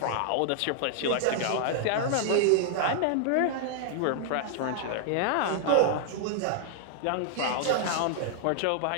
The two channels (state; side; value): different; both; correlation -0.01